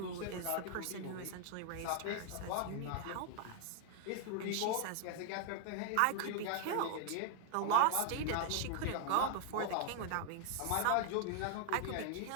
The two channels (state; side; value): different; both; correlation 0.00